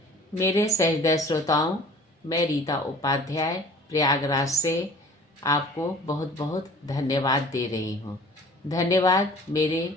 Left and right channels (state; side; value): normal; both; correlation 0.47